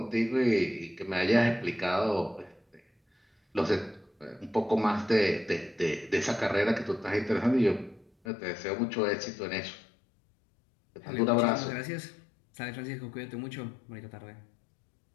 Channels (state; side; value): drops out; right; at 8.1 s